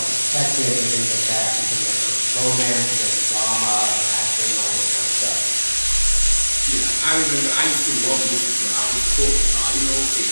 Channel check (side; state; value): both; inverted; correlation -1.00